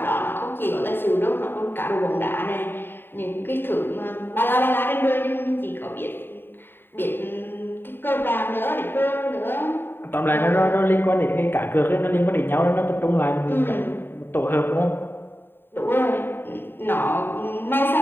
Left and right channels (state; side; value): late; right; 0.10 ms